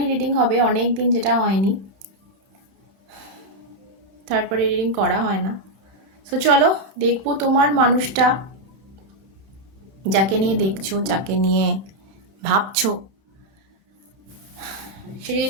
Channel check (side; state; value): left; late; 31 ms